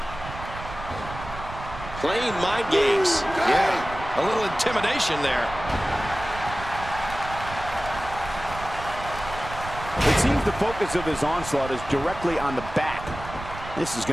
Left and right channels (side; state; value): right; noise; rumble, 11 dB below the sound